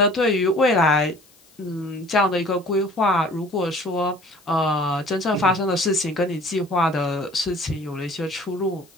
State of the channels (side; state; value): left; noise; hiss, 29 dB below the sound